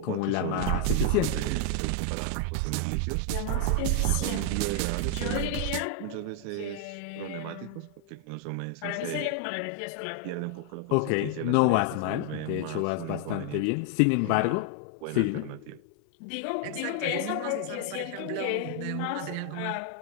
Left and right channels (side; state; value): both; different; correlation 0.00